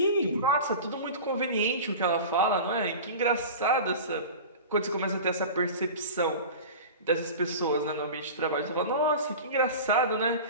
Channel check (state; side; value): inverted; both; correlation -0.33